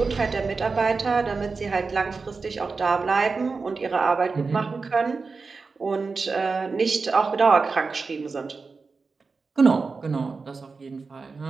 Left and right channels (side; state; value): left; quieter; 4.4 dB